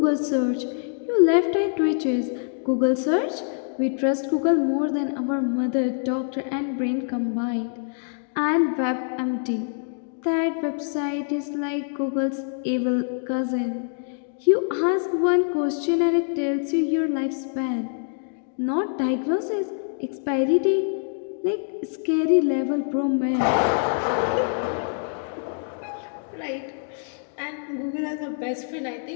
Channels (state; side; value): silent; right; digital silence